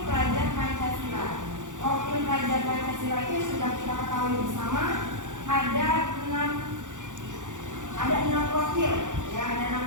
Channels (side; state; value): left; late; 0.86 ms